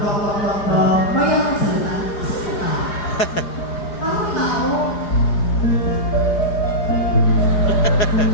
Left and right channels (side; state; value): right; late; 4.9 ms